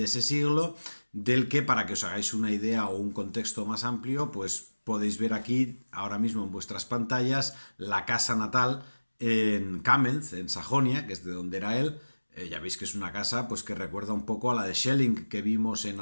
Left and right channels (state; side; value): inverted; both; correlation -1.00